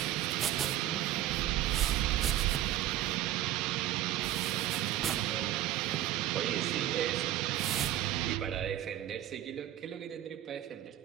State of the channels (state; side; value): quieter; left; 13.0 dB